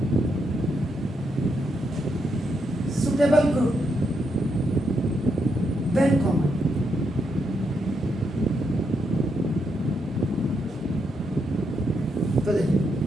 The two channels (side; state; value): both; normal; correlation 0.79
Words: suitable group then common. तो देखिए